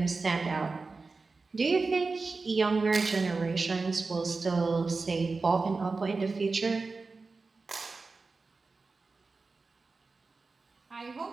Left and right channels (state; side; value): quieter; left; 4.0 dB